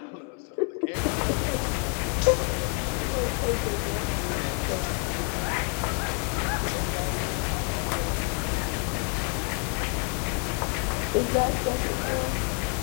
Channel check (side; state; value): right; quieter; 37.8 dB